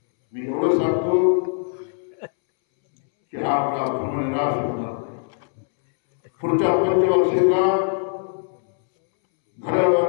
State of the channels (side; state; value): right; silent; 65 dB below the other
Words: मी एवढं सांगतो की हा आपला धर्मनिराश होणार. पुढच्या पंचवर्षीला